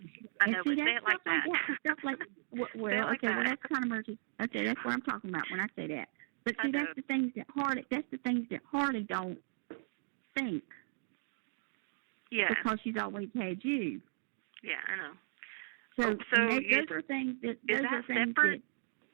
see, that's stuff like that. Stuff like, well, okay, well, that's kind of emergency. Okay, that's what I'm talking about when I say that. But see, that's the things that Harley don't think. Yeah. Because she's always had you. Yeah, I know. So those are things that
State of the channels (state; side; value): silent; left; digital silence